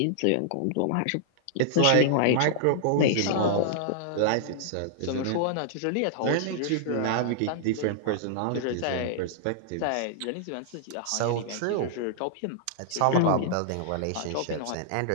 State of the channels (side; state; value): both; different; correlation -0.01